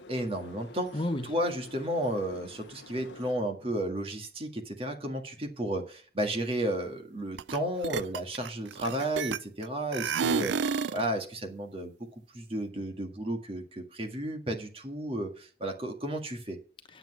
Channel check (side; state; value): both; normal; correlation 0.42